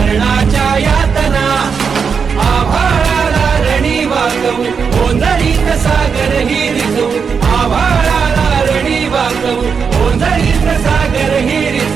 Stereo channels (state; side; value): quieter; left; 6.1 dB